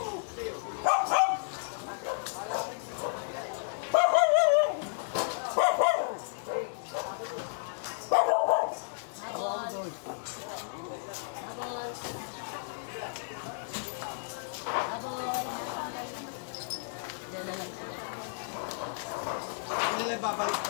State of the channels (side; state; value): right; silent; digital silence